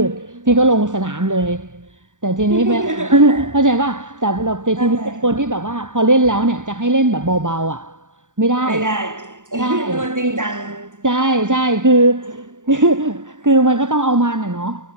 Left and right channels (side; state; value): left; late; 0.86 ms